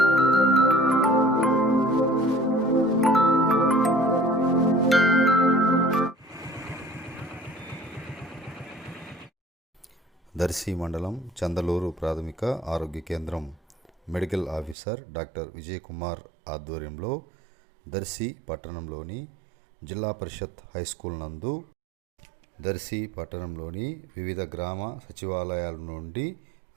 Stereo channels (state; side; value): drops out; left; at 14.8 s